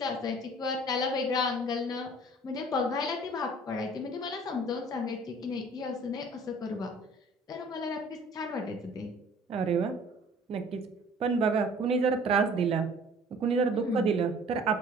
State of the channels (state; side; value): normal; both; correlation 0.50